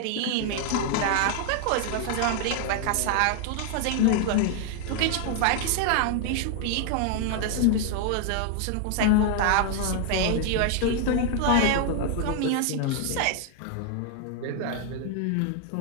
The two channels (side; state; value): both; different; correlation 0.00